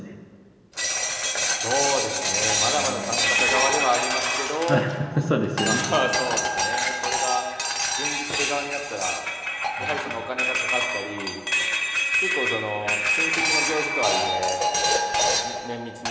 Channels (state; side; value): identical; both; correlation 1.00